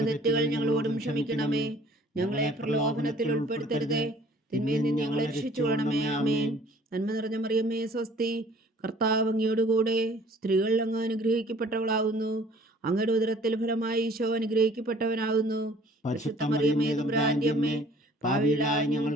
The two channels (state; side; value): normal; both; correlation 0.54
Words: തെറ്റുകൾ ഞങ്ങളോടും ക്ഷമിക്കണമേ. ഞങ്ങളെ പ്രലോഭനത്തിൽ ഉൾപ്പെടുത്തരുതേ, തിന്മയിൽ നിന്ന് ഞങ്ങളെ രക്ഷിച്ചുകൊള്ളണമേ. ആമേൻ. നന്മ നിറഞ്ഞ മറിയമേ സ്വസ്തി, കർത്താവ് അങ്ങയോടുകൂടെ സ്ത്രീകൾ അങ്ങ് അനുഗ്രഹിക്കപ്പെട്ടവളാകുന്നു. അങ്ങയുടെ ഉദരത്തിൽ ഫലമായി ഈശോ അനുഗ്രഹിക്കപ്പെട്ടവനാകുന്നു. പരിശുദ്ധ മറിയമേ തമ്പുരാന്റെ അമ്മേ, പാപികളായ